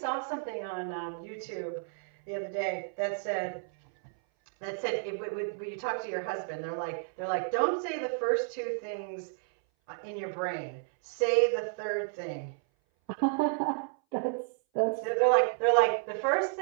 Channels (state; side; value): silent; left; 57 dB below the other